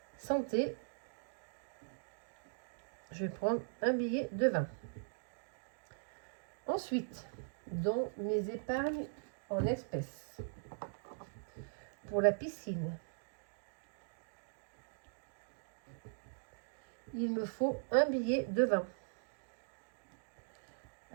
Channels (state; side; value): silent; left; digital silence